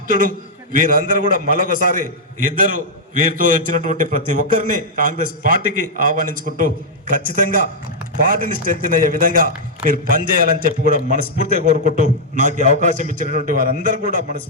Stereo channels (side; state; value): both; normal; correlation -0.06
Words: వీరందరూ కూడా మరొకసారి ఇద్దరు వీరితో వచ్చినటువంటి ప్రతి ఒక్కరిని కాంగ్రెస్ పార్టీకి ఆహ్వానించుకుంటూ ఖచ్చితంగా పార్టీని స్ట్రెంథెన్ అయ్యే విధంగా మీరు పనిచేయాలని చెప్పి కూడా మనస్ఫూర్తిగా కోరుకుంటూ నాకు అవకాశం ఇచ్చినటువంటి వారందరూ కూడా